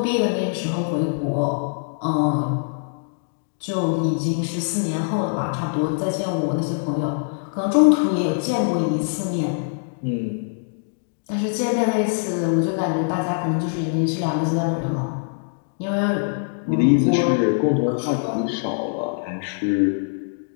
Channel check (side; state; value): right; silent; digital silence